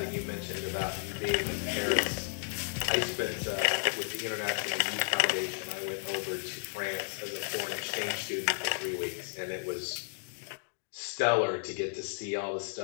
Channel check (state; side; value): silent; right; digital silence